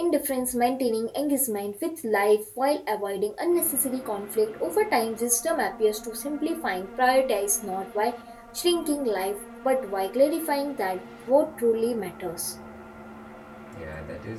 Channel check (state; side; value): identical; both; correlation 1.00